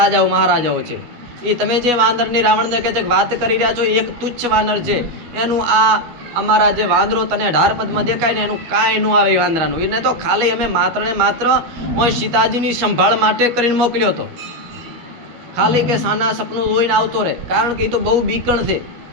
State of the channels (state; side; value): late; left; 12 ms